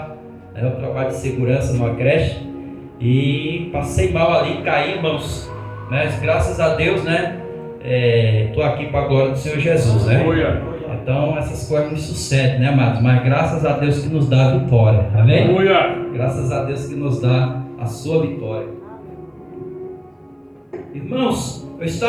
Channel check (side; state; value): both; identical; correlation 1.00